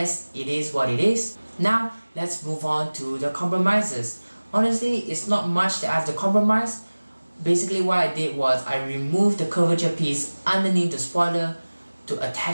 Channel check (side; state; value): both; inverted; correlation -1.00